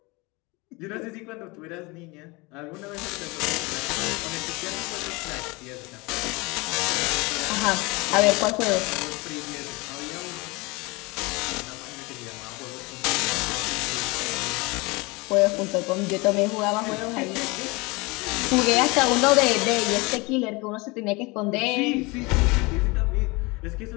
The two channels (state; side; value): quieter; right; 25.3 dB